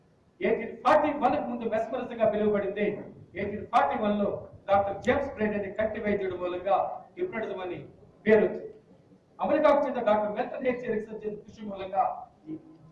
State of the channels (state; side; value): identical; both; correlation 1.00